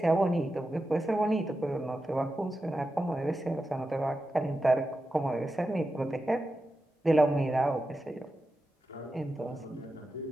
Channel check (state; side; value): normal; both; correlation 0.91